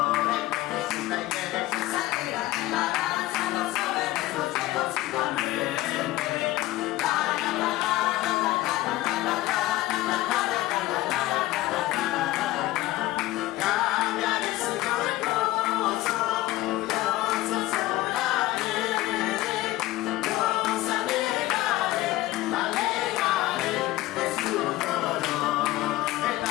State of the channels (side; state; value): right; quieter; 16.9 dB